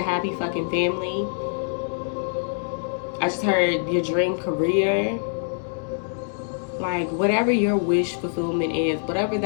happy fucking family. I just heard your dream career. Like, whatever your wish fulfillment is, whatever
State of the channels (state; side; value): silent; right; digital silence